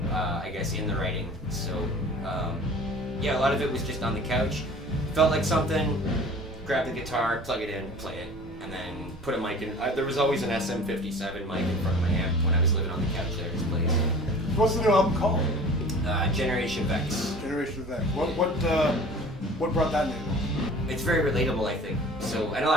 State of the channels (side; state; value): both; normal; correlation 0.44